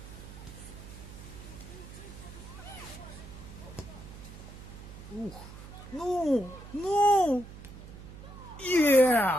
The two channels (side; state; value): right; noise; hum, 14 dB below the sound